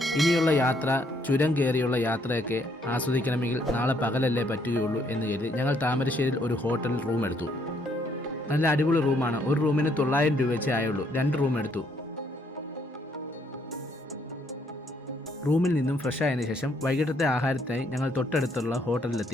ഇനിയുള്ള യാത്ര, ചുരം കയറിയുള്ള യാത്രയൊക്കെ ആസ്വദിക്കണമെങ്കിൽ നാളെ പകലല്ലേ പറ്റുകയുള്ളൂ എന്ന് കരുതി ഞങ്ങൾ താമരശ്ശേരിയിൽ ഒരു ഹോട്ടൽ റൂം എടുത്തു. നല്ല അടിപൊളി റൂമാണ്. ഒരു റൂമിന് 900 രൂപ വെച്ചേ ആയുള്ളൂ. 2 റൂം എടുത്തു. റൂമിൽ നിന്നും ഫ്രഷ് ആയതിനു ശേഷം വൈകിട്ടത്തെ ആഹാരത്തിനായി ഞങ്ങൾ തൊട്ടടുത്തുള്ള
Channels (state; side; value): normal; both; correlation 0.69